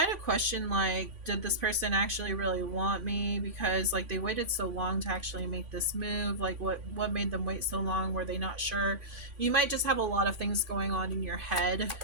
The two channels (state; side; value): late; left; 3.5 ms